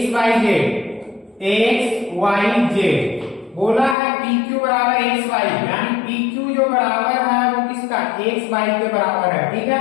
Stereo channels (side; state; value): right; drops out; at 4.0 s